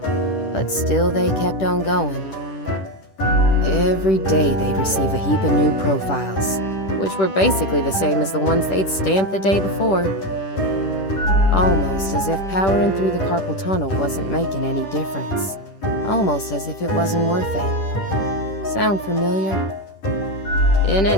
but still they kept on going. Every day they'd receive a heap of new profiles, which were basically the same as the ones they'd stamped the day before. Almost as if powering through the carpal tunnel wasn't making any difference. Almost as if it wasn't worth it. Sound familiar? In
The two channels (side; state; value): right; late; 10 ms